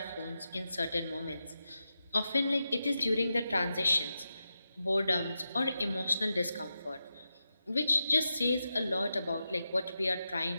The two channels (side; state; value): both; inverted; correlation -0.89